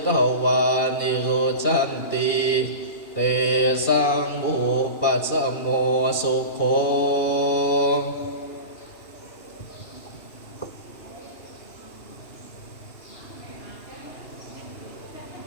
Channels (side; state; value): right; late; 2.8 ms